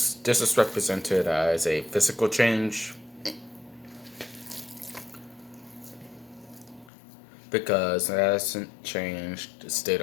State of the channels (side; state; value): right; drops out; at 6.9 s